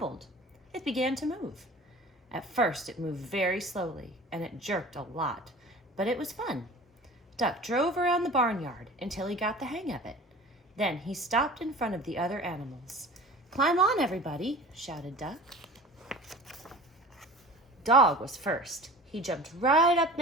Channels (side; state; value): both; normal; correlation 0.41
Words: It began to move. At first, it moved very slowly, and it jerked a lot, but it was fun. Duck drove around the barnyard until he got the hang of it. Then he stopped in front of the other animals. "Climb on, everybody," shouted Duck. Dog was first. He jumped right up